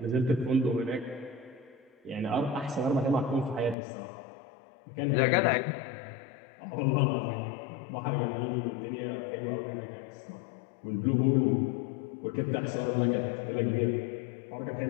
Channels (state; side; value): drops out; right; at 3.8 s